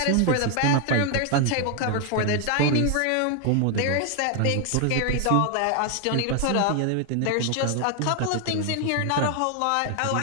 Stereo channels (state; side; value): different; both; correlation 0.00